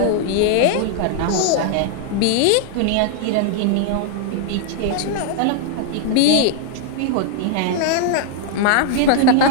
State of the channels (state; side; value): different; both; correlation 0.00